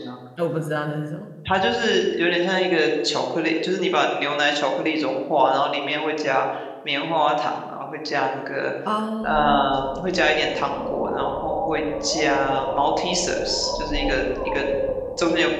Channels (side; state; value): both; identical; correlation 1.00